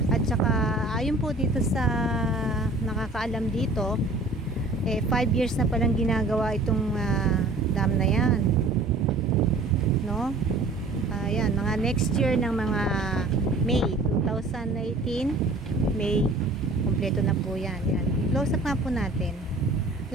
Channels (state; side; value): quieter; left; 3.0 dB